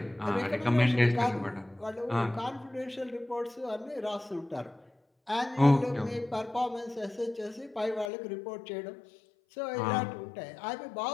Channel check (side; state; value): right; drops out; at 8.1 s